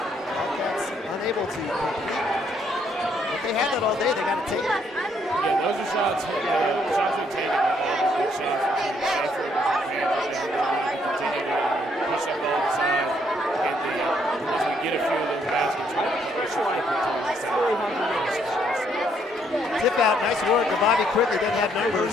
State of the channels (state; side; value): normal; both; correlation 0.70